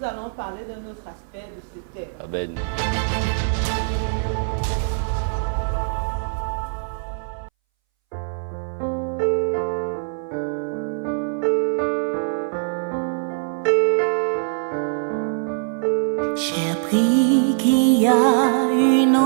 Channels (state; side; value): silent; left; 61 dB below the other